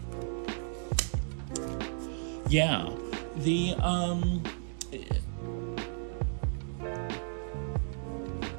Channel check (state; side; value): silent; left; digital silence